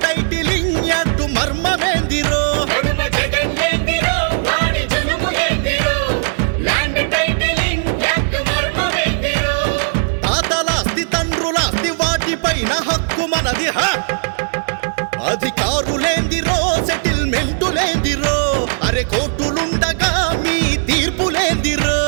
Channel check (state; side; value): silent; left; 57 dB below the other